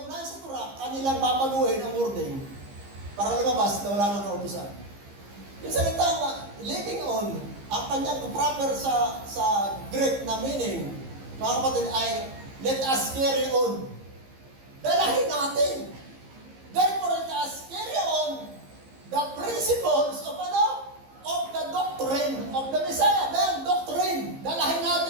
sa Torah, kanilang babaguhin ang wording para lumabas na wala nang kautusan. Yung salita, living on, ang kanyang proper sa Greek na meaning, mga kapatid, ay let us carry on. Dalahin natin. Therefore, let us carry on the principles of ano? Of the doctrine of the Messiah. Then, doctrine. Dalahin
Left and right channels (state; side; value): late; left; 15 ms